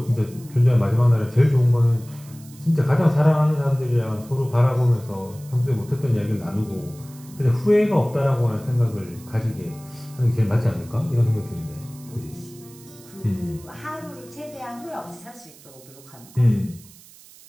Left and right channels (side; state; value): right; noise; hiss, 22 dB below the sound